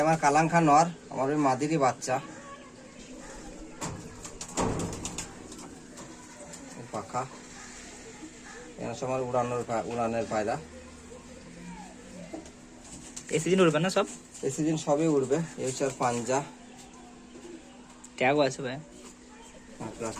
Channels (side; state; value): both; identical; correlation 1.00